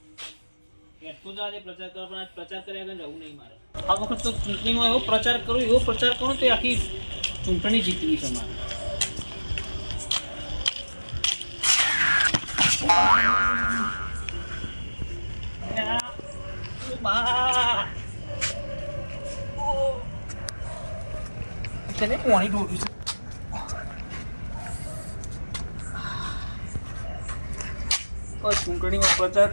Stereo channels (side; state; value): both; inverted; correlation -1.00